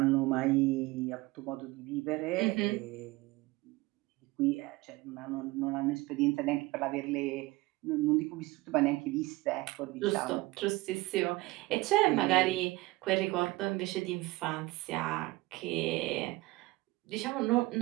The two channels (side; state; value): left; quieter; 20.9 dB